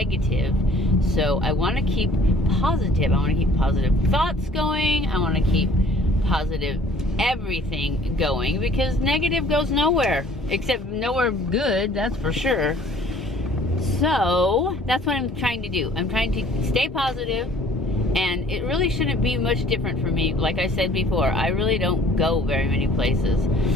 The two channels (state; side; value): normal; both; correlation 0.54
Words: So I want to keep positive. I want to keep positive thoughts going. I want to keep positive everything going, because negative goes nowhere, except nowhere good, that's for sure. So that's what I'm trying to do. I'm trying to stay positive, and it really shouldn't be much different for me. Like I said before, I really don't go very many places.